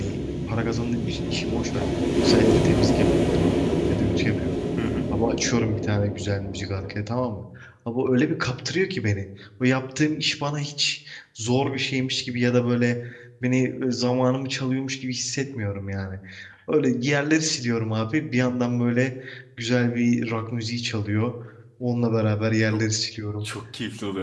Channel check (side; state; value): both; identical; correlation 1.00